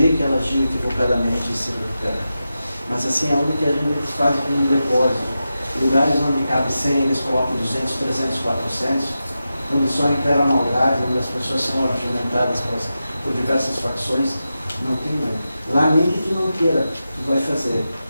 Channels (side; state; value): both; inverted; correlation -0.91